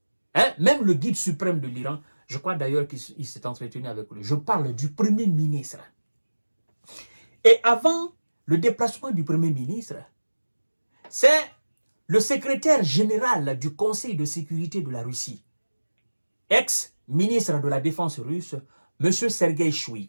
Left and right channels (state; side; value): inverted; both; correlation -1.00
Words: hein, même le guide suprême de l'Iran, je crois d'ailleurs qu'il s'est entretenu avec lui. Je parle du premier ministre. Et avant le déplacement du premier ministre, c'est le secrétaire général du Conseil de sécurité de la Russie, ex-ministre de la Défense russe, M. Sergei